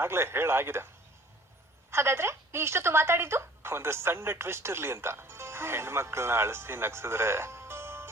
ಆಗ್ಲೇ ಹೇಳಾಗಿದೆ. ಹಾಗಾದ್ರೆ ನೀ ಇಷ್ಟೊತ್ತು ಮಾತಾಡಿದ್ದು ಒಂದು ಸಣ್ಣ ಟ್ವಿಸ್ಟ್ ಇರ್ಲಿ ಅಂತ. ಹೆಣ್ಮಕ್ಳನ್ನ ಅಳಿಸಿ ನಗ್ಸಿದ್ರೆ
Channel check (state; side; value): normal; both; correlation 0.52